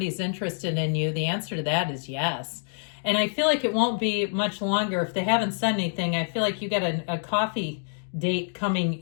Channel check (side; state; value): right; silent; digital silence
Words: interested in you, the answer to that is yes. And I feel like it won't be much longer. If they haven't said anything, I feel like you got a coffee date